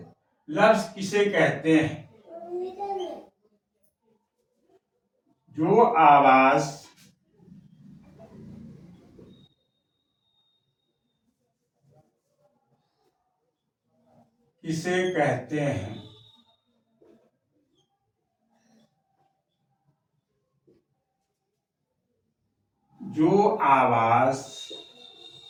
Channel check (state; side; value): identical; both; correlation 1.00